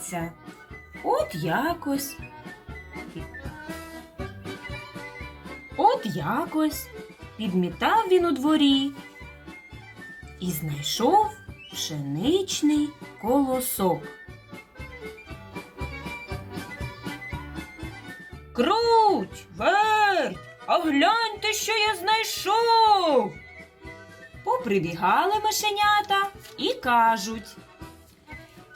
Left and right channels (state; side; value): identical; both; correlation 1.00